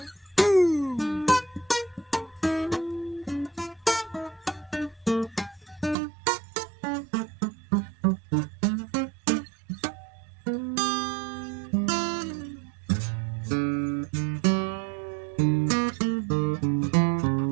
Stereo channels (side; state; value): left; drops out; at 6.0 s